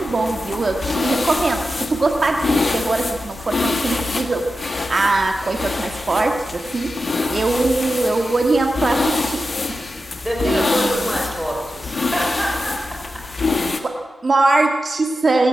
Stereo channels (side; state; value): both; normal; correlation 0.91